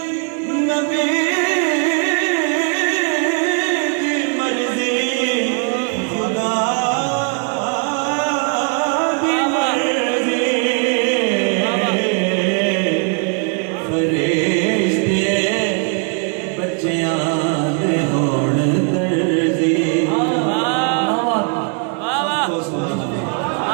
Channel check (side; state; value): left; quieter; 39.1 dB